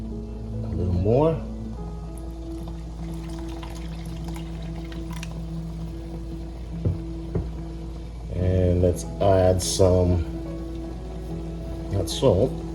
More. And let's add some, not salt,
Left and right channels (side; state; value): both; identical; correlation 1.00